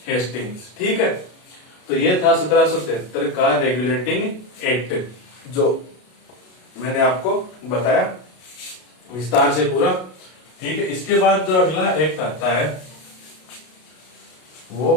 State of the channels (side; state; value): right; late; 33 ms